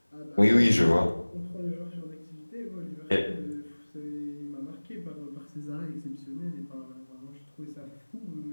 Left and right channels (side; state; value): both; inverted; correlation -1.00